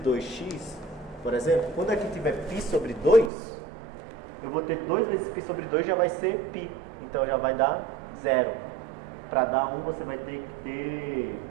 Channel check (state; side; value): drops out; left; at 3.3 s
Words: por exemplo, quando aqui tiver π sobre 2, eu vou ter 2 vezes π sobre 2 já vai ser π. Então já vai dar 0. Para dar 1 você vai ter que ter